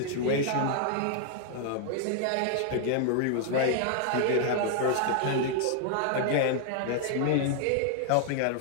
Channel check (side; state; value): both; different; correlation 0.00